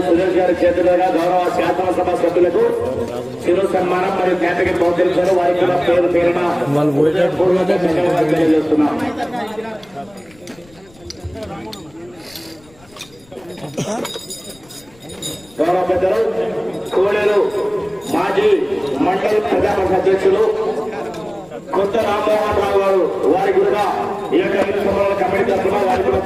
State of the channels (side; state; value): left; noise; rumble, 28 dB below the sound